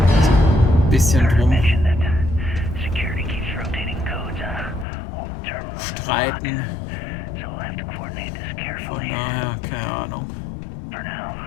so ein bisschen drum streiten. Von daher, keine Ahnung.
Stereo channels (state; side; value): drops out; right; at 4.9 s